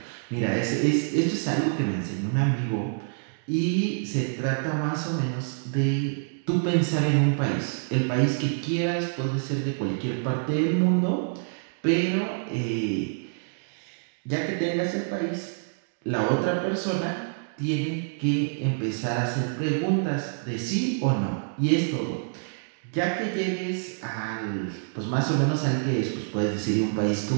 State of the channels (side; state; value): left; silent; digital silence